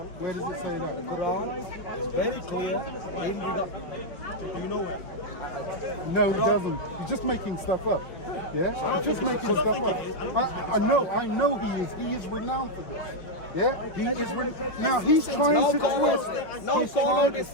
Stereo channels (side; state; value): right; late; 5.4 ms